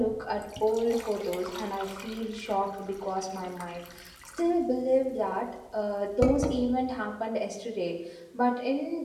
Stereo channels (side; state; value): both; identical; correlation 1.00